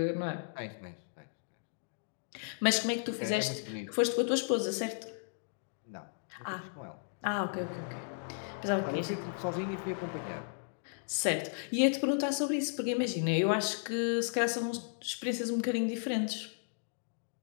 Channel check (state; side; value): silent; right; digital silence